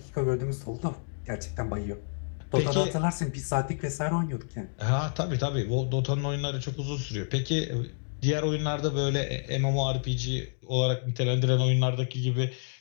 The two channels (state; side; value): silent; right; digital silence